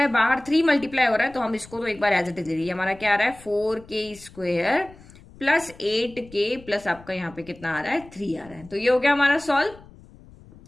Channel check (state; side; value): noise; left; rumble, 22 dB below the sound